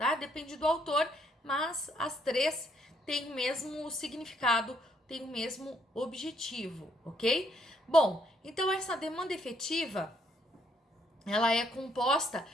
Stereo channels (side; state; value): both; normal; correlation 0.70